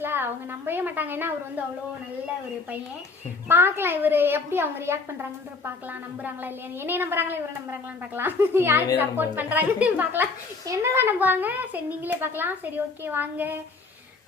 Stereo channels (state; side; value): quieter; right; 4.2 dB